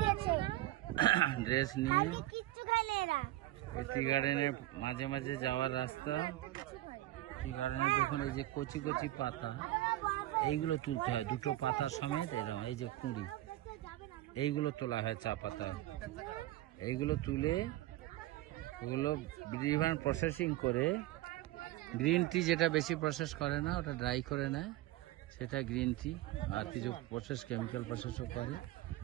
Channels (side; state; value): left; quieter; 16.0 dB